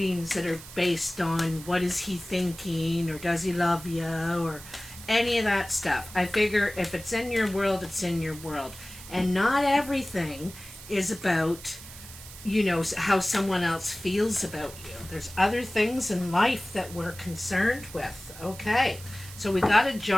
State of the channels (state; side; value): noise; right; hiss, 16 dB below the sound